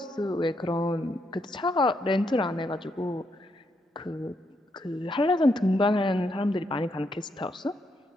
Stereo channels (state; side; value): normal; both; correlation 0.78